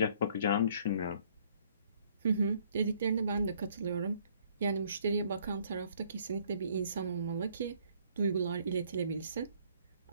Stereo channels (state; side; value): inverted; both; correlation -0.63